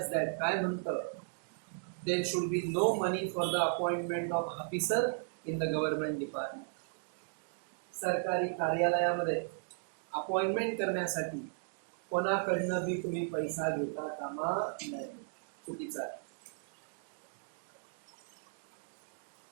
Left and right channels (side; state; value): left; silent; digital silence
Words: दॅट, काय म्हणतं? There should be no money for the appointment of officer in the government department. सरकारी कार्यालयामध्ये appointment करण्यासाठी कोणाकडनं बी तुम्ही पैसा घेता कामा नये. चुकीचा आहे.